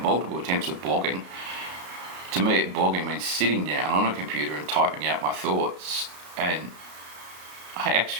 multiple attempts at blogging. To me, blogging means sitting down on a computer and typing out my thoughts, and I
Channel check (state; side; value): late; left; 33 ms